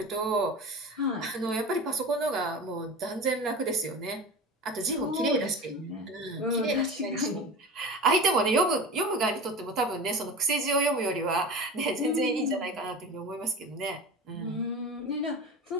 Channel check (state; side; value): normal; both; correlation 0.31